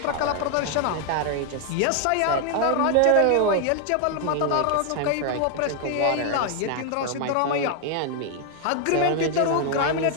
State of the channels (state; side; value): different; both; correlation 0.00